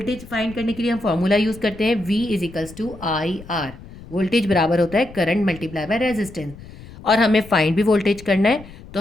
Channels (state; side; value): noise; left; rumble, 17 dB below the sound